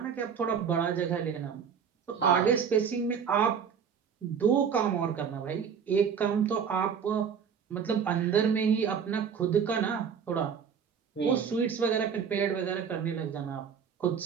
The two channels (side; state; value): left; quieter; 7.0 dB